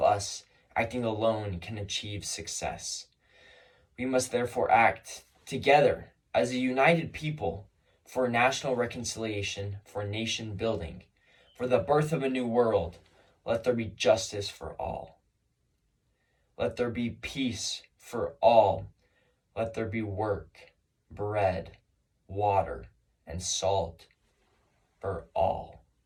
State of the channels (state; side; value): identical; both; correlation 1.00